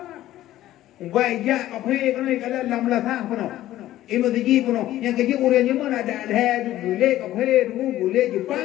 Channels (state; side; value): quieter; right; 14.2 dB